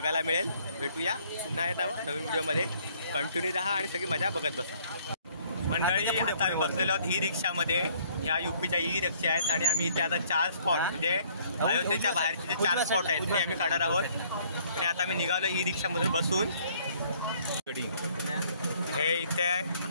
मिळेल। भेटूया पुन्हा येत नवीन व्हिडिओमध्ये, कंटिन्यू राहा आणि सगळी मजा बघत बसा। मंडळी, आता आम्ही बसलेलो आहोत ई रिक्षामध्ये, ह्या यूपीच्या ई रिक्षा आहेत आणि आम्ही इथे आता 4 स्पॉट म्हणजे अयोध्येच्या बाहेरचे जे 4 स्पॉट आहेत ते आम्ही काढणार आहोत। आणि आता आम्ही निघालो ई रिक्षामधून बसून। हे इथे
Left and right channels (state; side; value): inverted; both; correlation -0.62